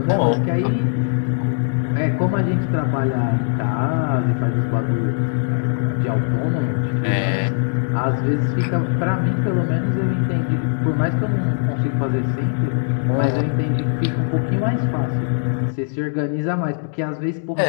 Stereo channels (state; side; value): silent; right; digital silence